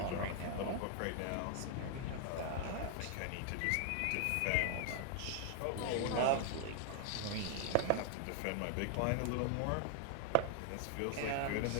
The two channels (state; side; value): different; both; correlation 0.00